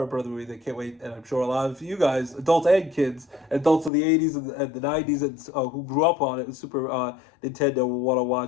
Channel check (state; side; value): drops out; right; at 3.9 s